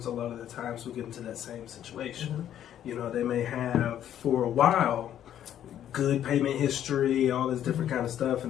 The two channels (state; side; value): quieter; right; 10.7 dB